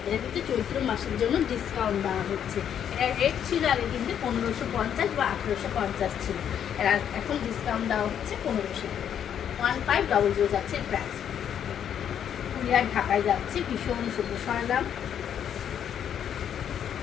এটা কিন্তু চৈত্র মাসের জন্য ডিসকাউন্ট দেওয়া হচ্ছে। এটা রেট ছিল আগে কিন্তু 1550 বা 1850 ছিল, এরা এখন ডিসকাউন্ট দেওয়া হচ্ছে 1500। 1500 যাচ্ছে প্রাইস। কুরিয়ার ঢাকায় যাচ্ছে, ভীষণ সুন্দর। সরলাম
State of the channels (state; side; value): quieter; right; 9.1 dB